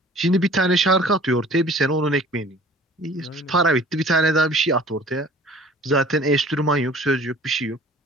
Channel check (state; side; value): normal; both; correlation 0.49